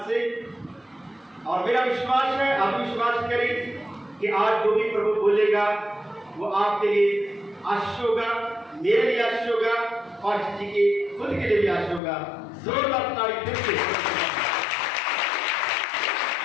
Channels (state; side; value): drops out; right; at 12.0 s